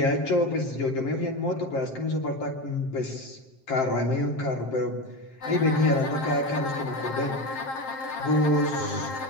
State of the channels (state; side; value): late; right; 7.5 ms